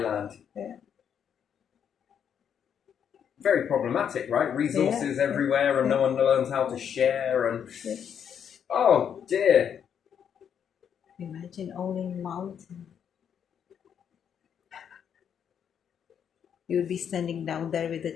Yeah. Very problematic, right? Resources everywhere and no one learns how to share and... Oh, dear. Imagine owning mountain. You'll be standing down there with a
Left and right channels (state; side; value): quieter; right; 8.2 dB